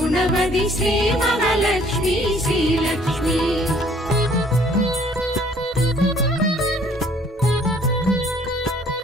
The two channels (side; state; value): both; normal; correlation 0.59